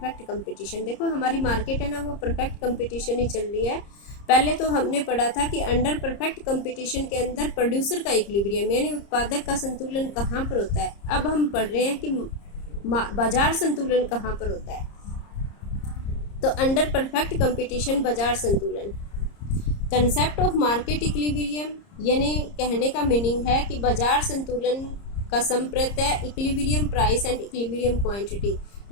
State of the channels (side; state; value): right; late; 30 ms